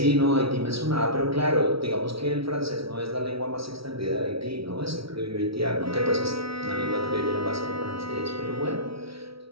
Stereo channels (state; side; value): late; left; 0.75 ms